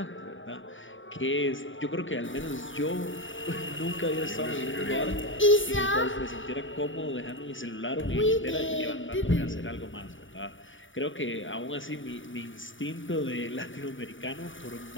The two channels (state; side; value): late; right; 0.56 ms